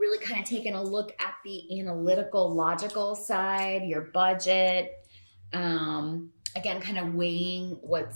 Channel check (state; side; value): inverted; both; correlation -1.00